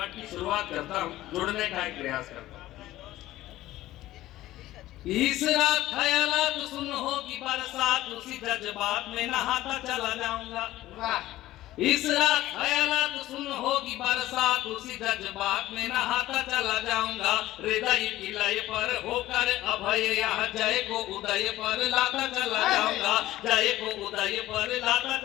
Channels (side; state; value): right; quieter; 15.5 dB